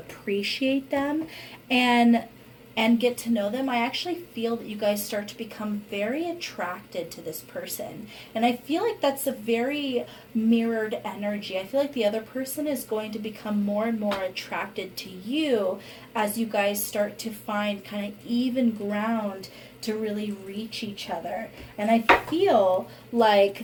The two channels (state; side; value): identical; both; correlation 1.00